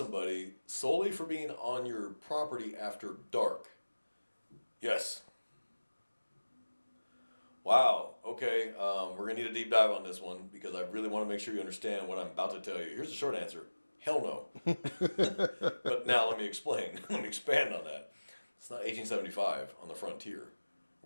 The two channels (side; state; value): both; inverted; correlation -1.00